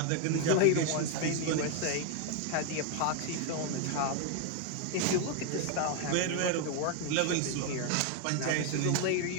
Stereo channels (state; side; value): different; both; correlation 0.01